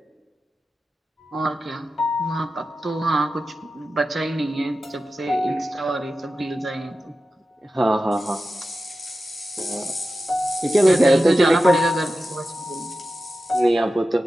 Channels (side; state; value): both; normal; correlation 0.92